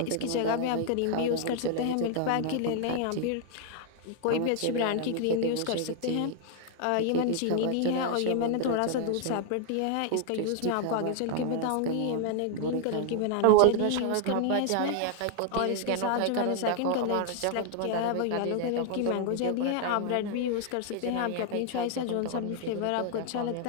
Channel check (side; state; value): both; different; correlation 0.00